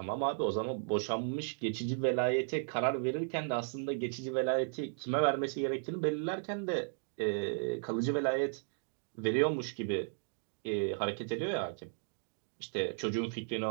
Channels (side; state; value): left; silent; digital silence